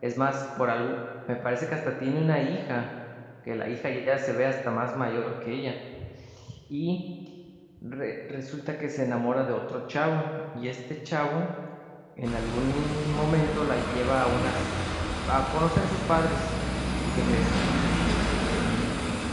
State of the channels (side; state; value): both; identical; correlation 1.00